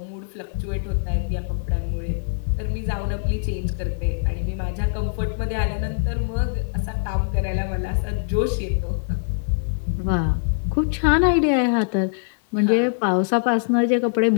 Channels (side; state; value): right; silent; 57 dB below the other